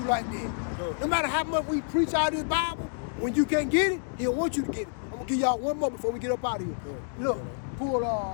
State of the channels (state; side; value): silent; right; digital silence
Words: like that. No matter how much we preach out of this Bible, when you can't get it, he don't want you to get it. I'm going to give y'all one more before we get up out of here. Look, pull